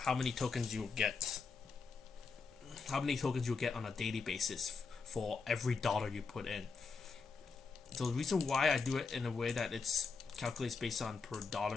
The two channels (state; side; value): quieter; right; 4.8 dB